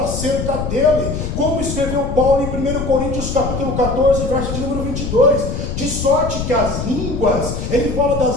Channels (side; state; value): left; noise; rumble, 4 dB below the sound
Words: dele, como escreveu Paulo em 1 Coríntios capítulo 14, verso de número 22, de sorte que as línguas, ele fala